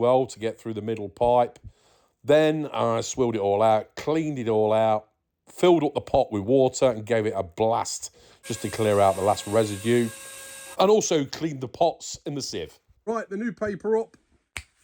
to get through the middle pipe. Then I swilled it all out, cleaned it all out, filled up the pot with water and gave it a blast just to clear out the last residue. And also cleaned the pots in the sieve. Right, the new paper up.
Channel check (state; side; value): identical; both; correlation 1.00